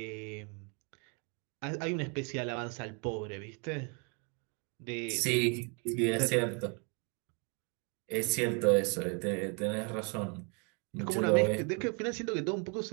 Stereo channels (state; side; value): quieter; left; 34.4 dB